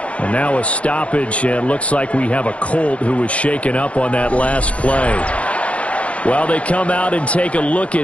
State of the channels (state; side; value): late; right; 0.063 ms